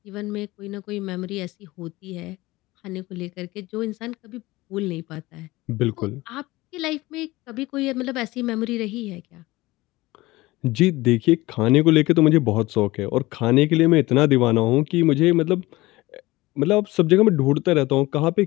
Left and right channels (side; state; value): right; quieter; 19.7 dB